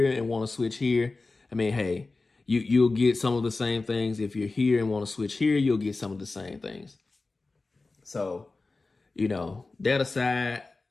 and want to switch here, I mean, hey, you'll get some of the same things. If you're here and want to switch here, you'll get some of the same things. So, you know, that aside,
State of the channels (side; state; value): right; quieter; 3.5 dB